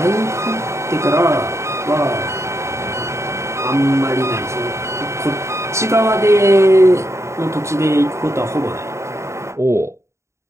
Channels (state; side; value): late; left; 0.14 ms